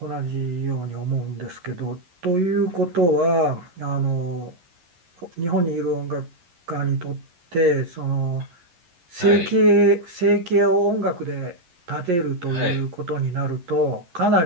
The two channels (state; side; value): late; left; 11 ms